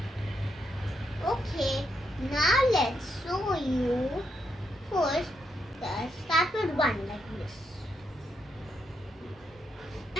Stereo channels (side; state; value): both; normal; correlation 0.79